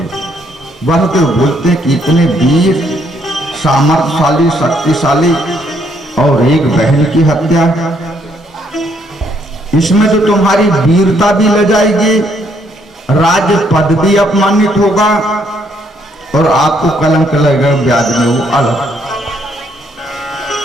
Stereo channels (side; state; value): both; normal; correlation 0.70